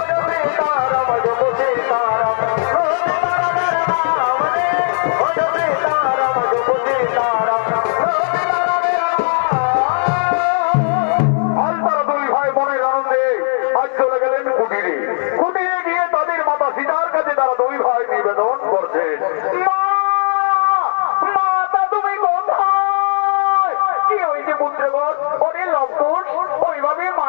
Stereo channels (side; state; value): right; silent; digital silence